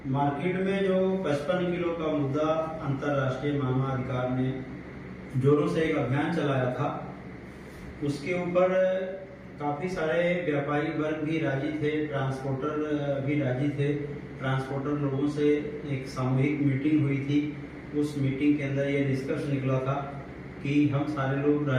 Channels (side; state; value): both; identical; correlation 1.00